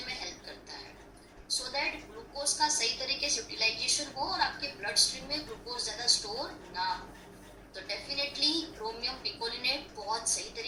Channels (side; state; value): both; identical; correlation 1.00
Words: में हेल्प करता है, सो दैट ग्लूकोज का सही तरीके से यूटिलाइजेशन हो और आपके ब्लड स्ट्रीम में ग्लूकोज ज्यादा स्टोर ना हो। तो डेफिनेटली क्रोमियम पिकोलिनेट बहुत सही